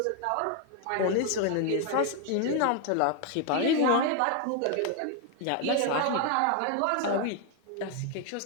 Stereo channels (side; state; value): both; different; correlation 0.01